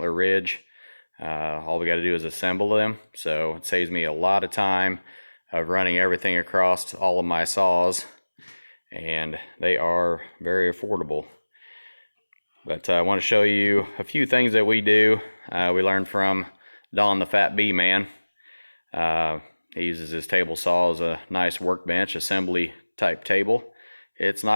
Ridge. All we got to do is assemble them, so it saves me a lot of time of running everything across all of my saws, and they are very affordable. But I want to show you a few things that we do. We learned from Don the Fat Bee Man. He uses his table saw as a nice workbench, assembly type table. It's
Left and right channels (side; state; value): both; inverted; correlation -1.00